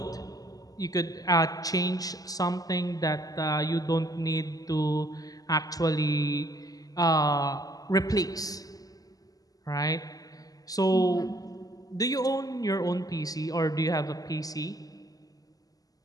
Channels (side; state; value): right; late; 0.17 ms